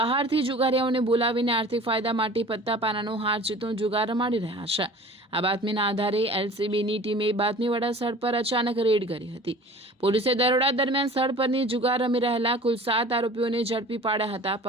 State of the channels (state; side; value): normal; both; correlation 0.44